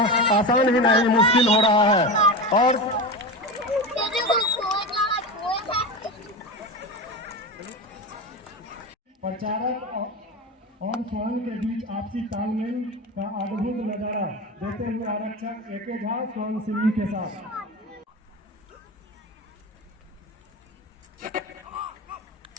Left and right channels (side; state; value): both; normal; correlation 0.23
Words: आसान ही नहीं, मुश्किल हो रहा है। और प्रचारक और स्वान के बीच आपसी तालमेल का अद्भुत नजारा देते हुए आरक्षक एके झा स्वान सिंह के साथ